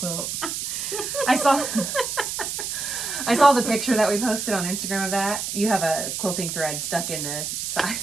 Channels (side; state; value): right; noise; hiss, 4 dB below the sound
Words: I saw the picture that we posted on Instagram of that. You have a quilting thread stuck in the side.